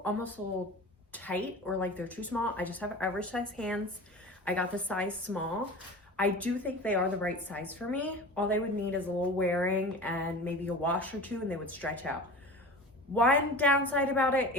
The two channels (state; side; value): normal; both; correlation 0.34